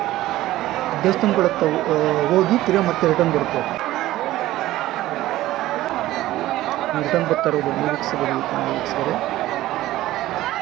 ದೇವಸ್ಥಾನಗಳತ್ತ ಹೋಗಿ ತಿರುಗಿ ಮತ್ತೆ ರಿಟರ್ನ್ ಬರುತ್ತೆ. ರಿಟರ್ನ್ ಬರ್ತಾ ಇರೋದು ನೀವು ವೀಕ್ಷಿಸಬಹುದು.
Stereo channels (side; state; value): left; quieter; 15.7 dB